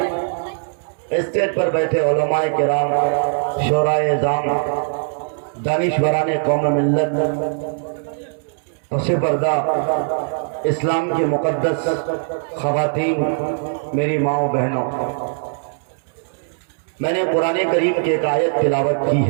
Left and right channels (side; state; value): left; silent; 65 dB below the other